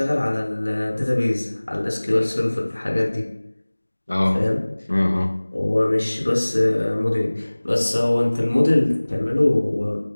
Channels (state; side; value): inverted; both; correlation -1.00